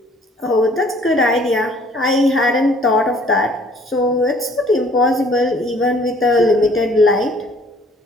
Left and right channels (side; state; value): both; normal; correlation 0.57